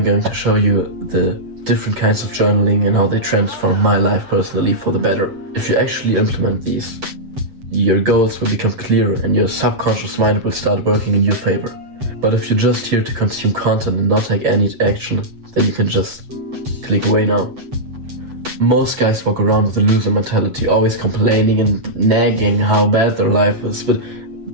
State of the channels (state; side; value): late; left; 7.9 ms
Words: going to show you the different kinds of journaling and how they transform my life personally for the better. If you actually implement these, your goals will become clearer and your subconscious mind will start working in your favor. But if you're just here to consume content and not take any action, then you can just click away now. Most guys walk around with a loser mentality, always complaining and nagging how bad their life is. But